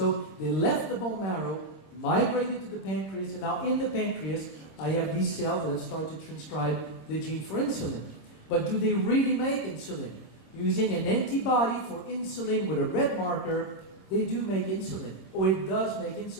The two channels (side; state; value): right; late; 26 ms